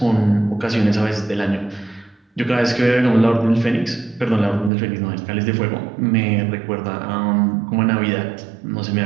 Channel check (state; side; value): drops out; left; at 4.7 s